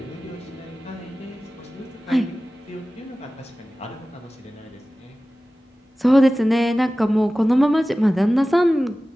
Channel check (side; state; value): both; normal; correlation 0.96